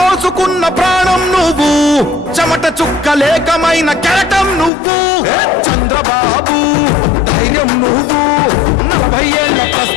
ప్రాణం నువ్వు చెమట చుక్కలేకమైన కెరటం నువ్వు చంద్రబాబు ధైర్యం నువ్వు 40 ఏళ్ల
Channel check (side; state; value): right; drops out; at 4.7 s